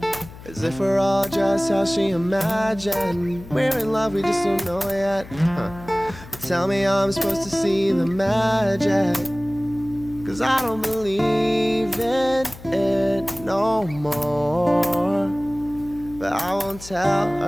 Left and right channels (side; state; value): left; noise; hum, 17 dB below the sound